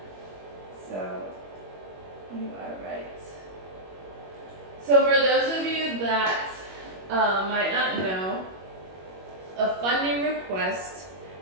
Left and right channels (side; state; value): left; late; 21 ms